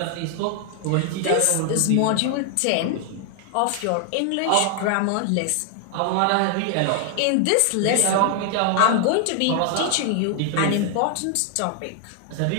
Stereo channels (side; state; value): both; different; correlation 0.00